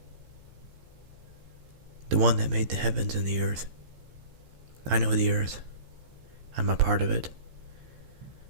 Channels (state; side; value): late; left; 15 ms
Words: the one that made the heavens and the earth. I know the earth. I'm a part of it.